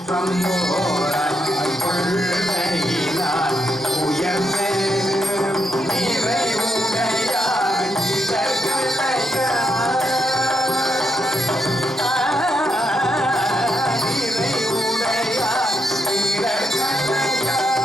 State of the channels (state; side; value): normal; both; correlation 0.81